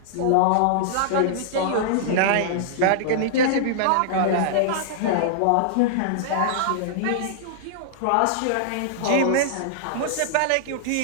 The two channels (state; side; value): different; both; correlation -0.01